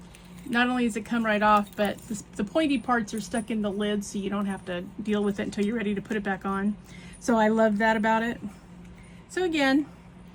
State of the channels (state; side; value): identical; both; correlation 1.00